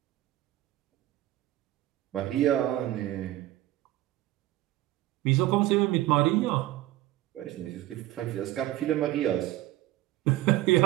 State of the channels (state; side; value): quieter; left; 15.7 dB